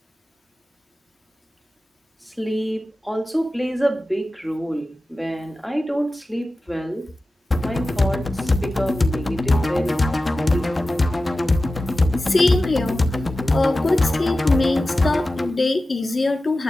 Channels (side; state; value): both; normal; correlation 0.94